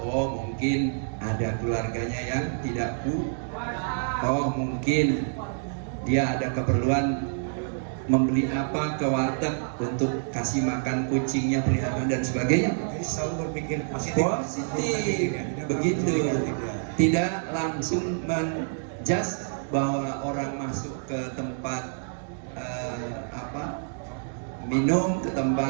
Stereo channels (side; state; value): left; silent; digital silence